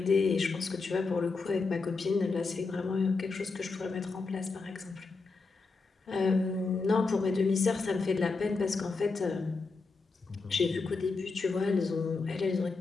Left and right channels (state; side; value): quieter; right; 4.1 dB